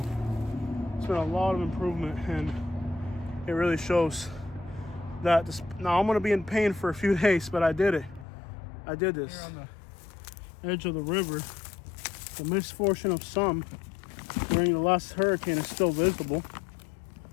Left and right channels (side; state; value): right; drops out; at 8.2 s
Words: It's been a lot of improvement, and it really shows that this, now I'm going to be in pain for a few days, but I did it. I did this. Here on the edge of the river, the misfortune of some during the last hurricane is still visible.